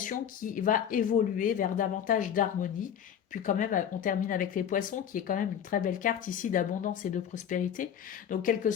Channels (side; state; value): right; quieter; 8.9 dB